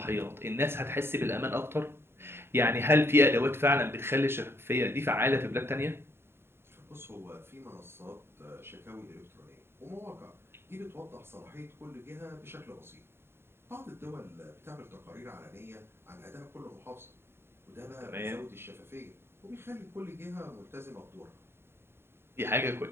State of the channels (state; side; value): late; left; 0.11 ms